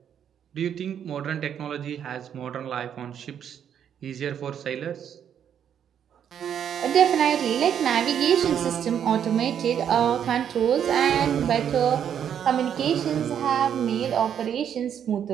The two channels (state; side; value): quieter; left; 8.9 dB